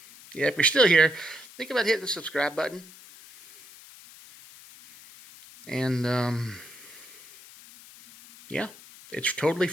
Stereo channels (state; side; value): noise; left; hiss, 20 dB below the sound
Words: Yeah, if you're still here, think about hitting the subscribe button. And, yeah, it's totally